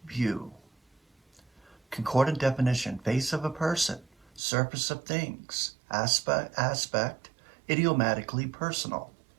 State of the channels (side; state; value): left; drops out; at 4.4 s